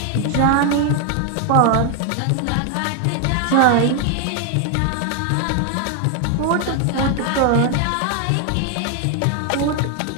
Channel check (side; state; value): both; different; correlation 0.00